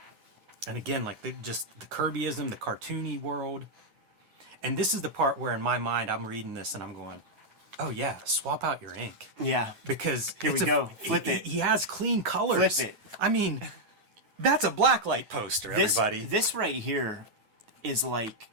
And again, like the Kirbyism, the cartoony world. And this is the part where in my mind I'm reading this and I'm going, oh yeah, swap out your ink. Yeah. Because here we go. Flip it. He has clean colors. Flip it. I mean, that's a blacklight poster, everybody. This right here is like,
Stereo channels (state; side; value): late; left; 9.2 ms